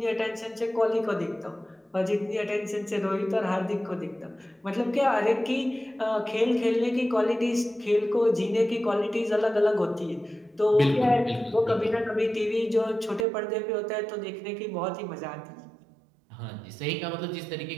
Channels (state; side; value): drops out; left; at 13.2 s